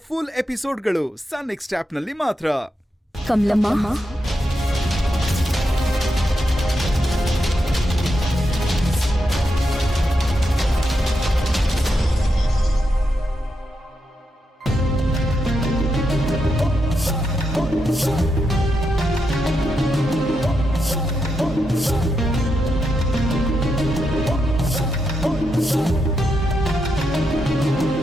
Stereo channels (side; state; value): both; normal; correlation 0.84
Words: ಫುಲ್ ಎಪಿಸೋಡ್ಗಳು ಸನ್ ನೆಕ್ಸ್ಟ್ ಆಪ್ನಲ್ಲಿ ಮಾತ್ರ. ಕಮಲಮ್ಮ,